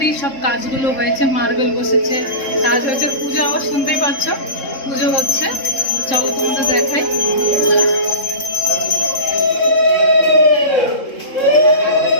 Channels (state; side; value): late; right; 3.7 ms